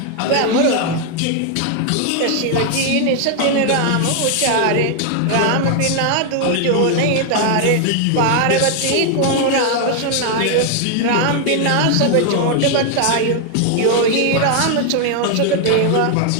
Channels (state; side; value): different; both; correlation 0.00